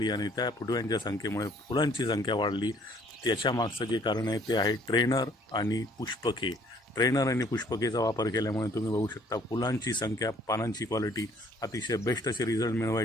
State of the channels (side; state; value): both; normal; correlation 0.60